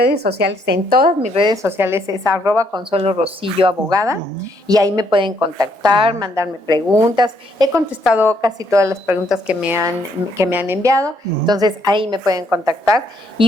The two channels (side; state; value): left; late; 1.7 ms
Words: sociales, en todas mis redes sociales es @Consuelo Rosillo Abogada, y ahí me pueden contactar, mandarme preguntas. He contestado casi todas las preguntas que me han enviado, entonces ahí me pueden contactar